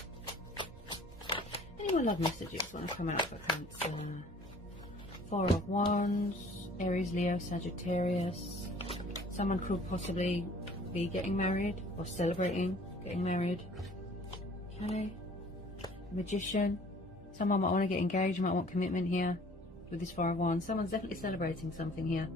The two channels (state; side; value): normal; both; correlation 0.52